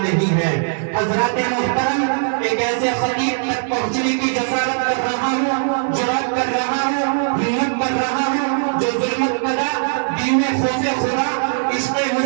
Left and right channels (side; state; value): left; silent; 61 dB below the other